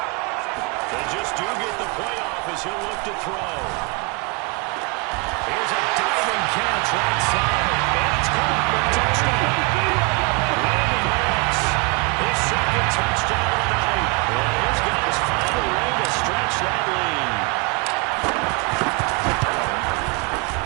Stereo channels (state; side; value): quieter; left; 29.5 dB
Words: They just do get the playoff as he'll look to throw. Here's a diving catch right side. And it's caught for a touchdown. Randy Moss, his second touchdown of the night. And his guys find a way to stretch that lead.